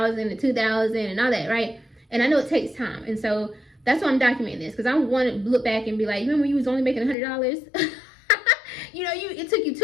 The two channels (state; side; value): drops out; right; at 7.2 s